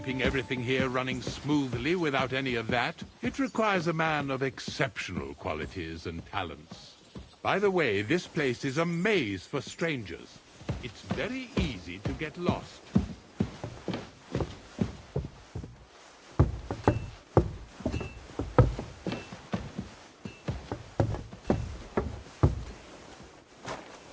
everything here running smoothly without any of that. It requires a man of exceptional qualities and talents. By the way, this place is a maze for strangers. It's very easy to get lost.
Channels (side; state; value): both; identical; correlation 1.00